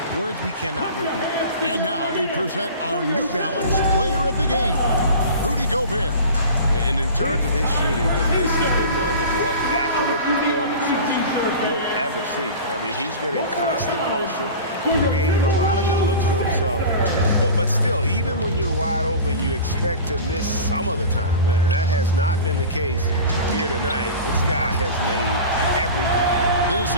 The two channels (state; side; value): inverted; both; correlation -0.35